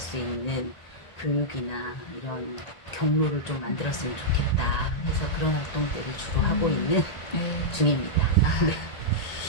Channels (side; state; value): right; late; 1.9 ms